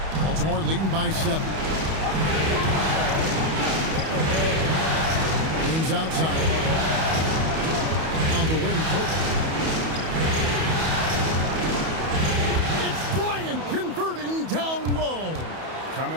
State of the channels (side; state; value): left; late; 31 ms